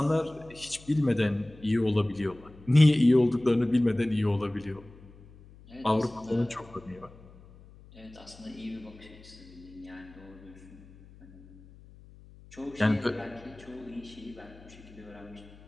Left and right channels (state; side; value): noise; left; hum, 22 dB below the sound